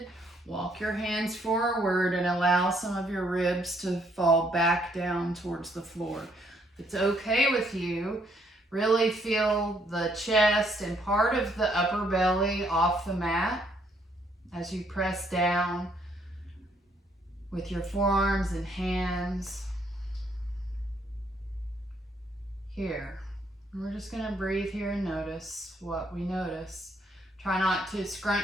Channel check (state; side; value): normal; both; correlation 0.69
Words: walk your hands forward and allow some of your ribs to fall back down towards the floor. If it's okay with you, really feel the chest and part of the upper belly off the mat as you press down with your forearms and hands here. And we're just going to breathe here and notice what we notice. Try not to